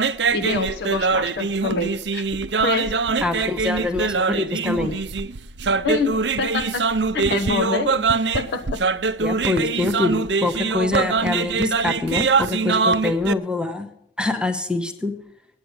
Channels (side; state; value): both; normal; correlation 0.21